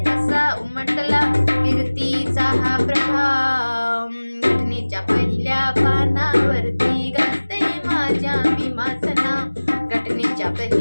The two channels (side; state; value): both; inverted; correlation -1.00